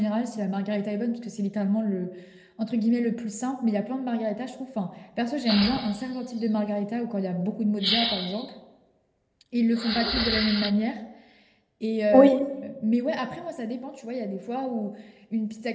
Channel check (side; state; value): both; identical; correlation 1.00